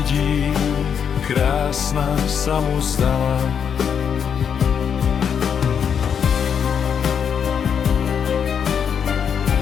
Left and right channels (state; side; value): quieter; right; 7.5 dB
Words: krásna sa mu zdala.